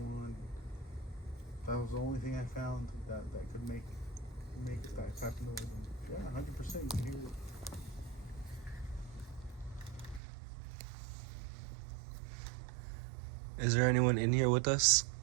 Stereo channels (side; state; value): left; drops out; at 10.2 s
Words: That was the only thing I found that could make that type of noise. Yeah, 100% you can hear it. Is there anyone in here with us?